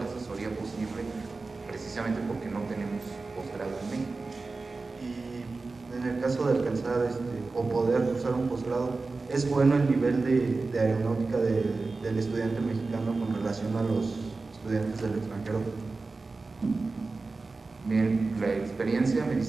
asesoría posible precisamente porque no tenemos posgrado en México. Y en el caso de alcanzar o poder cursar un posgrado, ¿es bueno el nivel de aeronáutica del estudiante mexicano con relación a los estudiantes del extranjero? Bien, la experiencia me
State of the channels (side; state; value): left; quieter; 3.8 dB